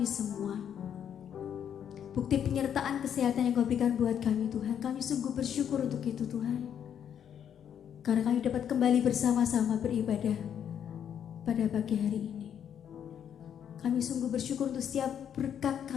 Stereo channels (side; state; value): right; quieter; 8.9 dB